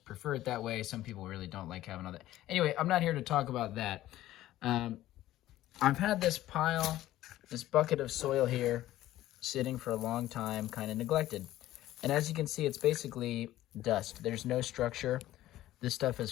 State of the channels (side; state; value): right; quieter; 14.6 dB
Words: prefer it that way. Some people really don't like having all that. Anyway, I'm not here to talk about that. Um, I've had this bucket of soil here sitting for a long time, kind of neglected. And as you can see, it's basically dust. There's no structure. This stuff is